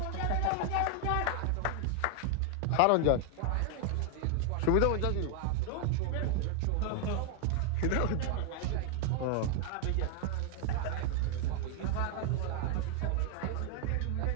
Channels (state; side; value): different; both; correlation 0.00